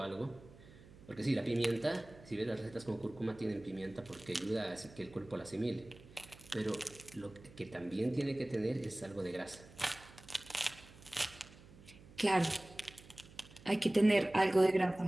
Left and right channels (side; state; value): right; noise; hum, 21 dB below the sound